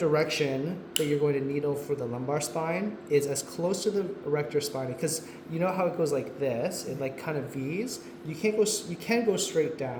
that you're going to needle for the lumbar spine is as close to the erector spine, because you know how it goes like this, it like kind of V's. You can go straight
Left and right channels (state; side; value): identical; both; correlation 1.00